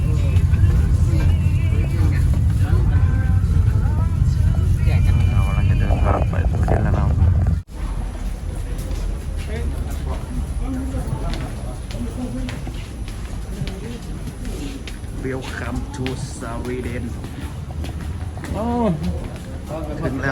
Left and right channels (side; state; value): both; identical; correlation 1.00